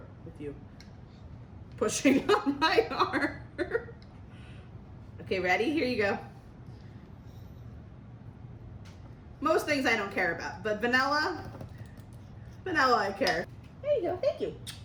with you pushing on my arm. Okay, ready? Here you go. Most things I don't care about, but vanilla I care. There you go. Thank you.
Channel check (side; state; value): both; identical; correlation 1.00